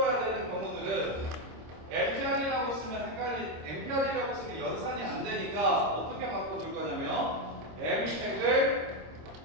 되는 경우들은 MPR이라고 쓰면 MPR이라고 쓰면 연산이 안 되니까 어떻게 바꿔줄 거냐면 MP를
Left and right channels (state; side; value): late; left; 26 ms